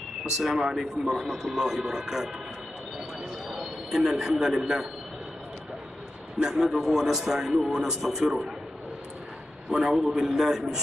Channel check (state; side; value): normal; both; correlation 0.91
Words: السلام عليكم ورحمة الله وبركاته. إن الحمد لله نحمده ونستعينه ونستغفره ونعوذ بالله من